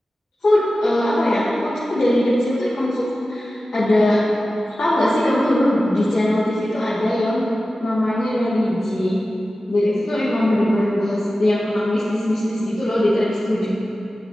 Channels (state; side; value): normal; both; correlation 0.94